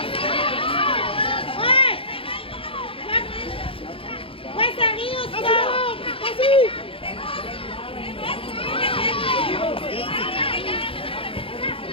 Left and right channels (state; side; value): late; right; 0.26 ms